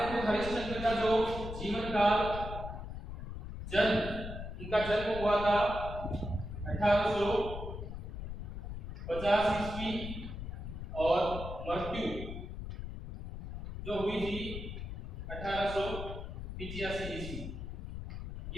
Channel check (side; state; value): left; noise; rumble, 7 dB below the sound